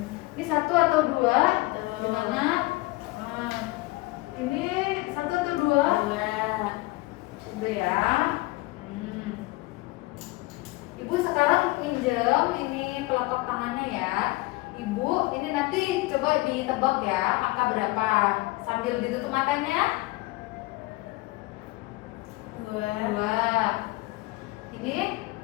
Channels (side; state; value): right; quieter; 21.4 dB